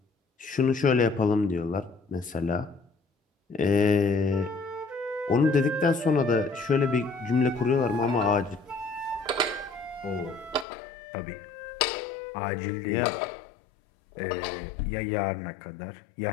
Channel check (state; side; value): drops out; right; at 10.7 s